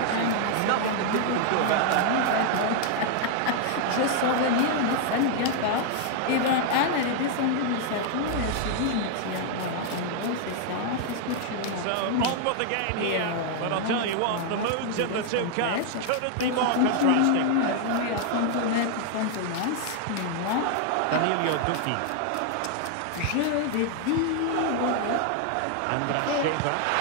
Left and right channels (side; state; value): both; different; correlation 0.00